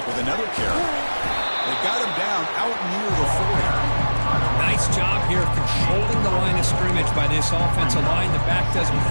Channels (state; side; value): inverted; both; correlation -1.00